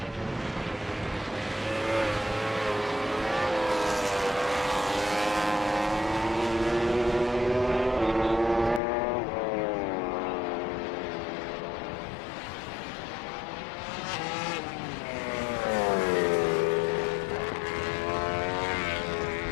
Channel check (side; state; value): right; drops out; at 8.8 s